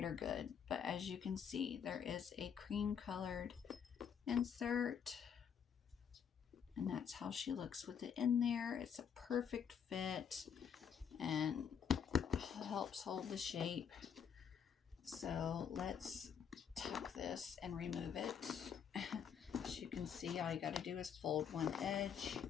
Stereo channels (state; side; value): quieter; right; 7.6 dB